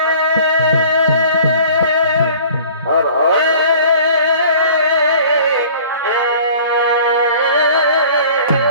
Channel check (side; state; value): both; inverted; correlation -0.48